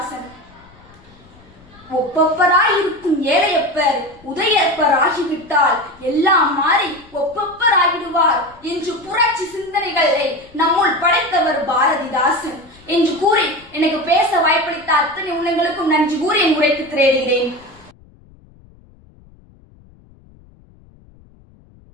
ஒப்பப்பராய் இருக்கும் ஏழையப்பர் உதயப்பர் ஆகிவிட்டால் எல்லாம் மாறி ஒப்பப்பர் ஆகிடுவார் என்று புரட்சி சிந்தனைகளை நம்முள் படைத்தவர் பாரதிதாசன் என்று கூறி எனக்கு பேச வாய்ப்பளித்த அத்தனை உள்ளங்களுக்கும் நன்றி கூறி என் உரைக்கு திரையிடுகிறேன்.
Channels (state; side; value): noise; left; rumble, 27 dB below the sound